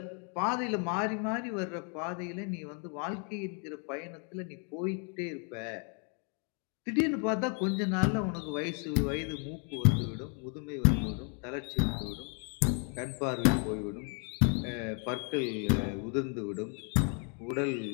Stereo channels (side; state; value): right; quieter; 39.5 dB